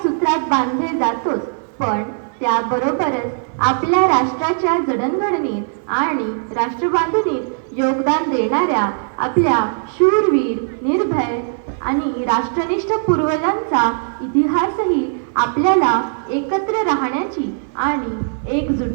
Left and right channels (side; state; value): left; silent; 61 dB below the other